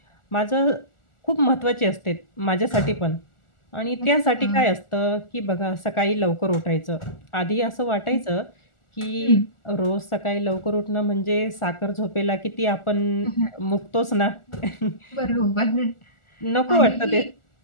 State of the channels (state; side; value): late; right; 1.4 ms